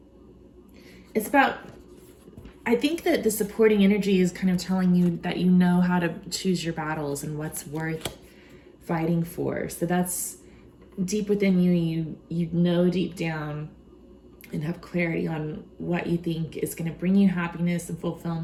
It's about, I think that the supporting energy is kind of telling you that you know how to choose your battles and what's worth fighting for. So that's deep within you. You know deep down and have clarity on what you think is going to bring you happiness and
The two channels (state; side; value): identical; both; correlation 1.00